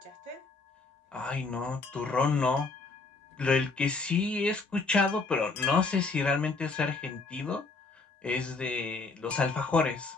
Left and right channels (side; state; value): right; quieter; 3.9 dB